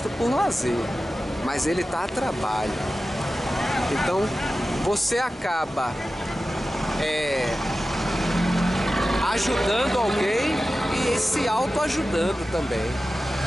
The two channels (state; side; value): normal; both; correlation 0.94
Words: por lazer, mas ele tá a trabalho. Então você acaba ajudando alguém e se autoajudando também,